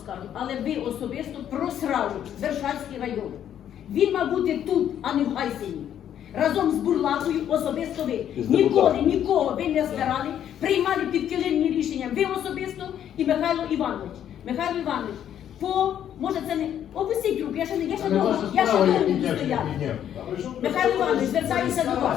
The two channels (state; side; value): quieter; right; 10.1 dB